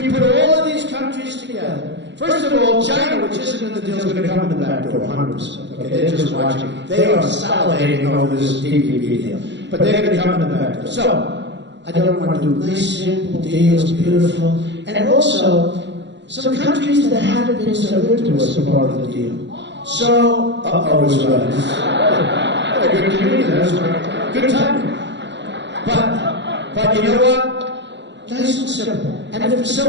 you put all of these countries together, First of all, China, which isn't in the deal, is going to come in the back door, 100%. Okay, they're just watching. They are salivating over this TPP deal. But they're going to come in the back door. So, I don't want to do nice, simple deals, beautiful. And also, some countries that haven't been so good to us are part of the deal. So, it was right. Good community, that was right. Good timing. But you know what? Nice and simple. And if for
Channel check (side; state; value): left; late; 0.52 ms